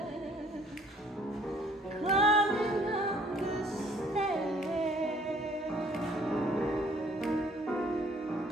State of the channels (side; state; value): both; normal; correlation 0.59